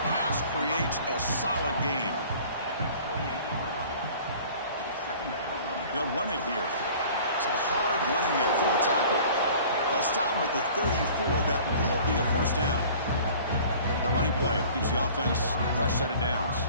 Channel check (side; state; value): both; inverted; correlation -0.47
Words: pass creates a solid gain. They'll run it here. It's a hard running there for a tackle. They'll stop him at the 34. That will be a first down. The running play gives the offense a fresh set of downs.